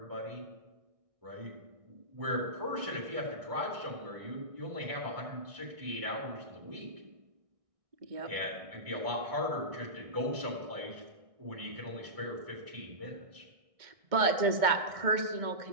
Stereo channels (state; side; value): late; left; 1.6 ms